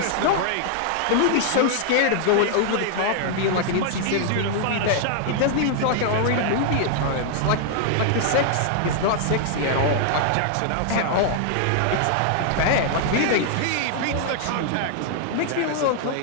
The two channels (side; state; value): both; different; correlation 0.00